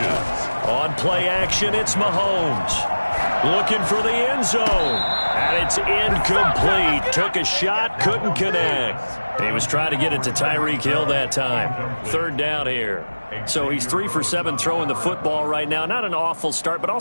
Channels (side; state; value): both; inverted; correlation -1.00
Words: On play action, it's Mahomes. Looking for the end zone. And it's incomplete. Took a shot, couldn't connect. He was trying to get it to Tyreek Hill that time. 3rd down here. So he's 3 for 7 throwing the football right now. Not an awful start, but